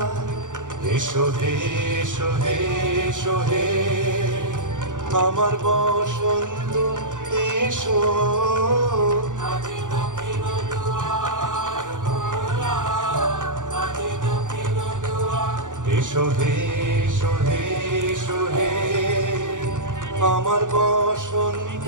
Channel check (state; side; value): late; left; 0.87 ms